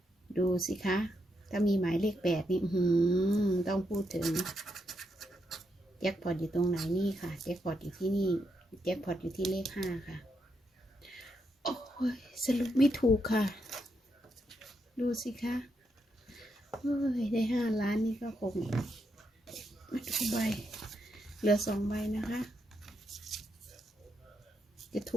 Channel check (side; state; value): both; normal; correlation 0.81